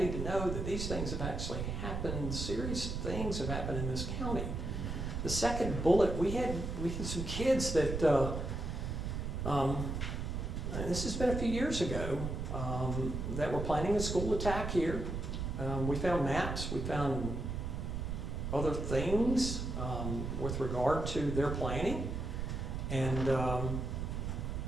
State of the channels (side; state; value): right; noise; rumble, 3 dB below the sound